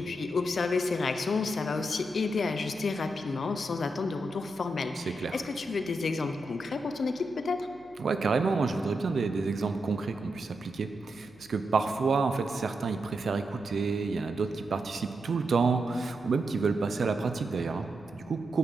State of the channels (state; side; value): noise; left; hum, 25 dB below the sound